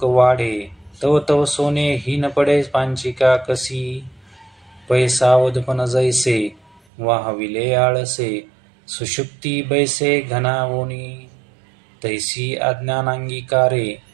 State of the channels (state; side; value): drops out; left; at 6.8 s